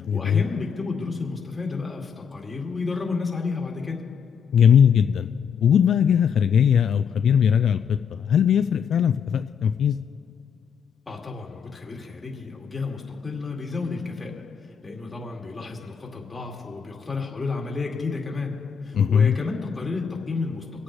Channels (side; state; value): right; quieter; 7.1 dB